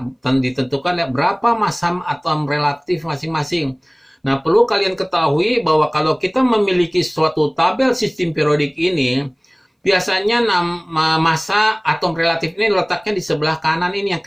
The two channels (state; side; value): identical; both; correlation 1.00